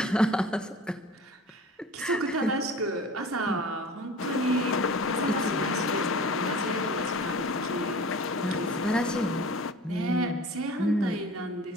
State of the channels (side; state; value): both; normal; correlation 0.41